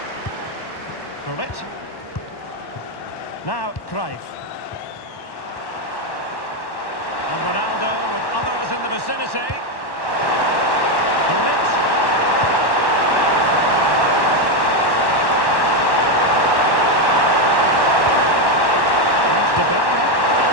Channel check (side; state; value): right; late; 1.1 ms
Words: Bullet. Now, Cruyff. And Ronaldo with others in the vicinity. Bullet. Here's De Bruyne.